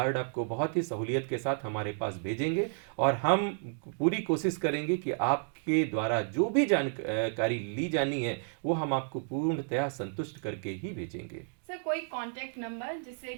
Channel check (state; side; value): silent; left; 57 dB below the other